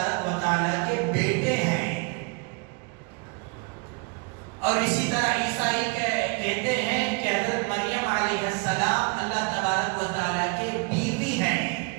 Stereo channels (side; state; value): left; quieter; 31.6 dB